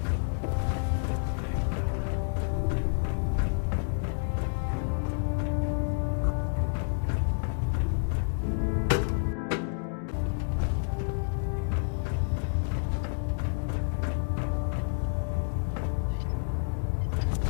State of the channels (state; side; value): silent; right; digital silence